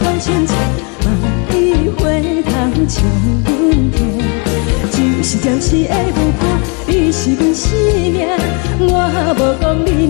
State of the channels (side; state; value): right; quieter; 34.8 dB